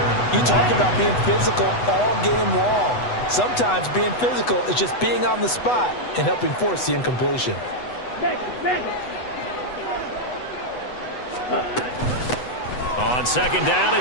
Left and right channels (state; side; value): late; right; 8.1 ms